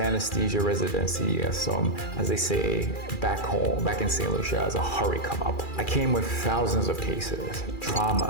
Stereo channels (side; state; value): right; late; 2.4 ms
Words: residency as they say back home, back in St. Lucia, as a hurry come up. I came with thousands of cases,